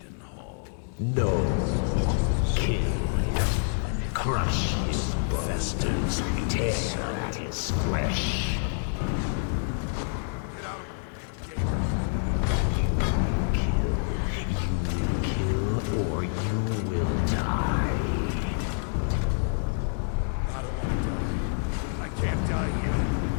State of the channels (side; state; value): right; silent; digital silence